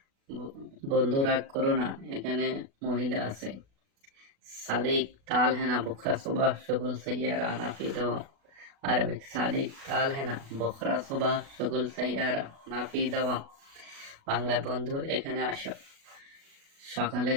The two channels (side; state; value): left; late; 36 ms